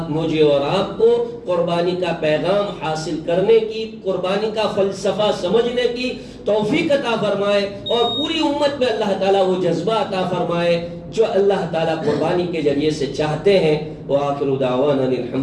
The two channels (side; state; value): both; identical; correlation 1.00